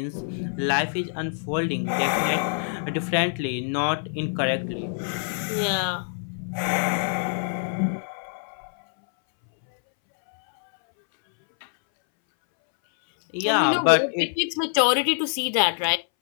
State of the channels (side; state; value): right; silent; 61 dB below the other